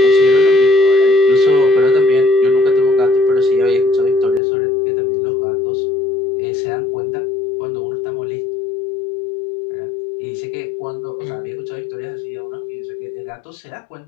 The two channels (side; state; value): right; drops out; at 4.4 s